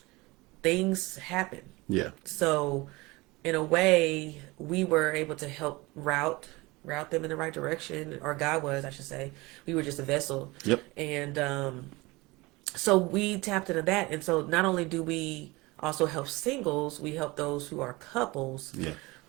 things happen. Yeah. So in a way, we were able to help route them in the right direction, or God was, I should say. We were just a vessel. Yep. And so we tapped into that. And so not only do we also help singles, we help those who are couples Yeah.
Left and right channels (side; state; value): left; quieter; 22.7 dB